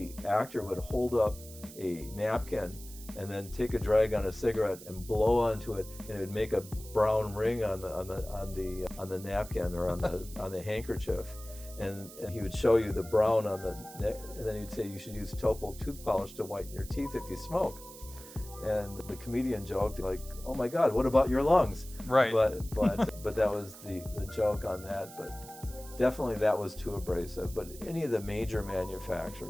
actor would hold up a napkin and then take a drag on a cigarette and blow onto it, and it would make a brown ring on the napkin or on the handkerchief. And he would show you the brown on the neck, and then he'd say you should use Topol tooth polish to whiten your teeth if you smoke. And the comedian joked like, "Oh my God, what about your lungs?" Right. But that was the joke on that. But definitely that was too abrasive. But any of the major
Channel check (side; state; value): right; noise; hiss, 16 dB below the sound